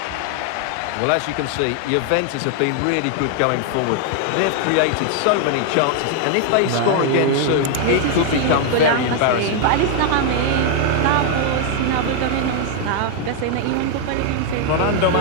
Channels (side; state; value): both; different; correlation 0.00